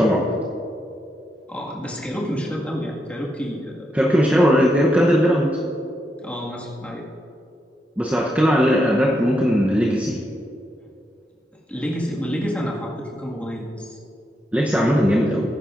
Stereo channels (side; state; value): both; normal; correlation 0.82